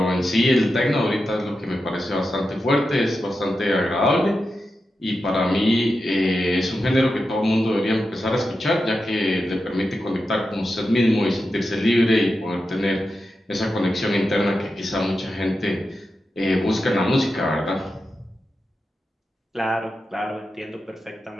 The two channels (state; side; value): normal; both; correlation 0.90